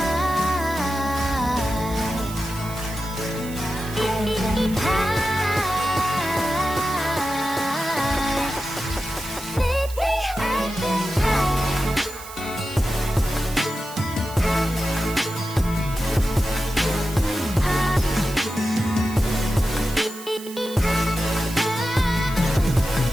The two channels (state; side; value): noise; right; hiss, 15 dB below the sound